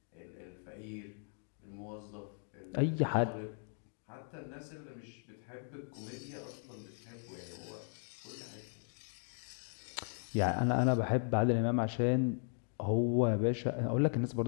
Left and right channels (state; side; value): silent; right; 53 dB below the other